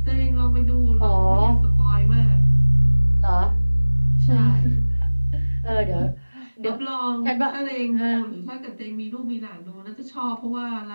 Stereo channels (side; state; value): both; inverted; correlation -1.00